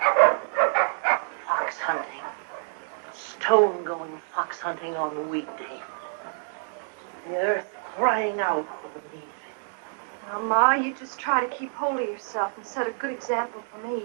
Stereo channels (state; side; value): silent; left; digital silence